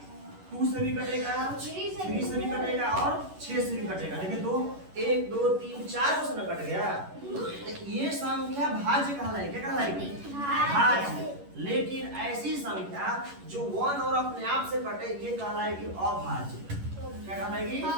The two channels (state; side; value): late; left; 11 ms